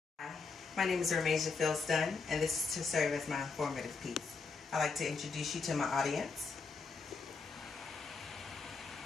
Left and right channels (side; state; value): right; quieter; 4.7 dB